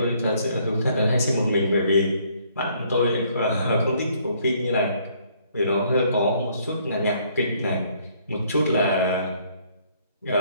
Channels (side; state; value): both; inverted; correlation -0.65